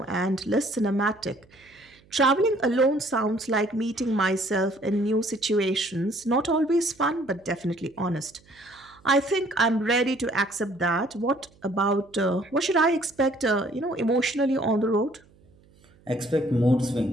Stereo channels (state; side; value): noise; right; hum, 29 dB below the sound